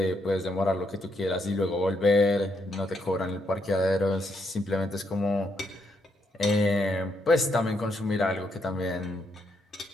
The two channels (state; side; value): normal; both; correlation 0.77